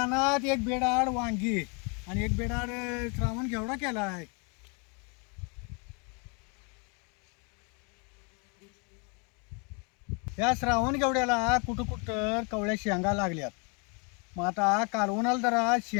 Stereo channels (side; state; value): right; quieter; 33.7 dB